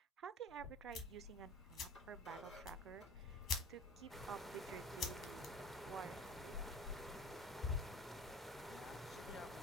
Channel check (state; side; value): normal; both; correlation 0.43